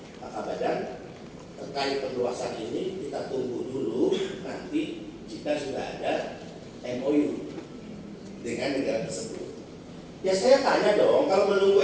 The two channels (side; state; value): both; identical; correlation 1.00